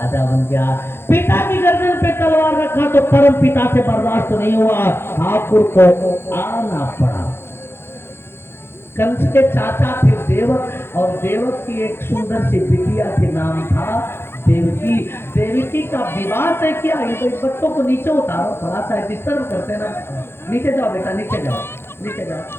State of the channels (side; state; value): right; late; 0.11 ms